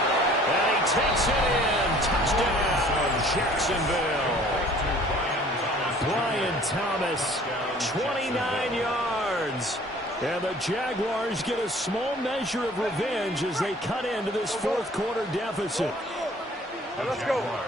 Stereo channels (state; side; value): normal; both; correlation 0.52